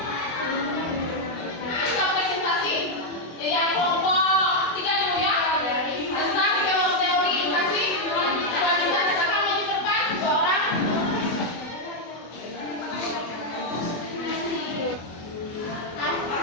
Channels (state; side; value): late; right; 24 ms